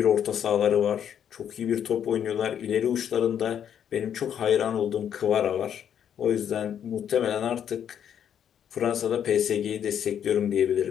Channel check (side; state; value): right; quieter; 9.1 dB